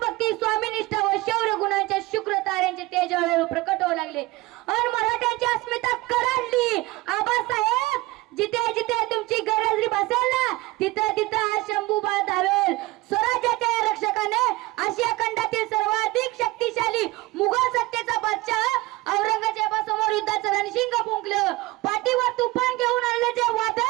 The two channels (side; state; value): left; quieter; 20.6 dB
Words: स्वामीनिष्ठा व शौर्य गुणांच्या शुक्र ताऱ्यांचे तेज हळूहळू प्रकट होऊ लागले आणि मराठ्यांची अस्मिता कडाडली। आबासाहेब जिथे जिथे तुमची गरज भासेल ना तिथे तिथे हा शंभूबा धावेल। स्वराज्याच्या रक्षकाने आशिया खंडातील सर्वाधिक शक्तिशाली मुघल सत्तेचा बादशाह औरंगजेबासमोर युद्धाचं रणशिंग फुंकलं। पाठीवर तुफान घेऊन आलेले जे